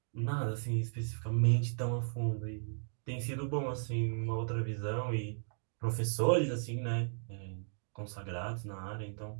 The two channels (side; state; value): left; silent; digital silence